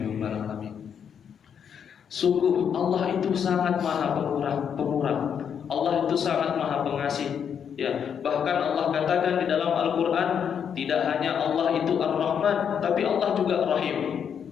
alamin. Sungguh Allah itu sangat maha pemurah. Allah itu sangat maha pengasih. Ya, bahkan Allah katakan di dalam Al-Quran, tidak hanya Allah itu Ar-Rahman, tapi Allah juga Rahim.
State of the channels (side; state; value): right; quieter; 7.8 dB